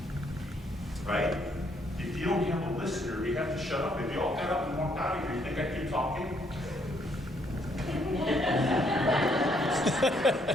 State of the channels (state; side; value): normal; both; correlation 0.70